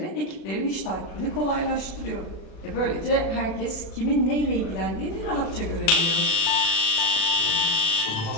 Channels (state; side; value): late; right; 37 ms